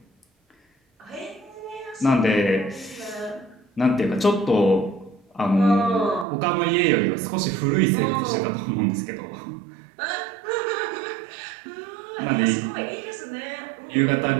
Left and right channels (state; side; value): drops out; left; at 6.2 s